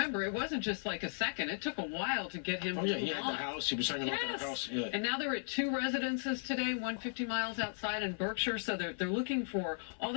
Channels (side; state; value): right; silent; 54 dB below the other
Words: it wasn't just like a second. It took a while to get him Oh, yeah, to he move had on. the house. He was hanging out to the house. Yeah. And now they're at 2 residences today, 150 miles outside in Berkshire. So they're looking for all